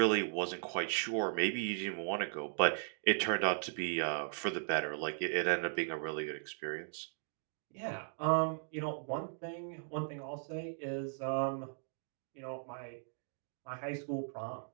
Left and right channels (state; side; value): silent; left; digital silence